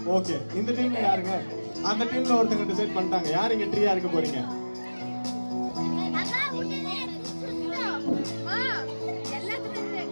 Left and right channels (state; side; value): inverted; both; correlation -1.00